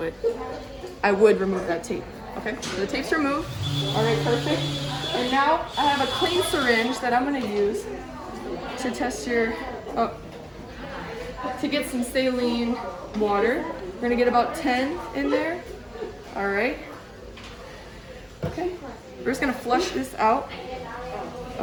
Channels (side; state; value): both; identical; correlation 1.00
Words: I would remove that tape. Okay, so the tape's removed. Alright, perfect. And now I have a clean syringe that I'm going to use to test your, to get some saline water. We're going to get about 10 in there. Alright. Okay. We're just going to flush this out.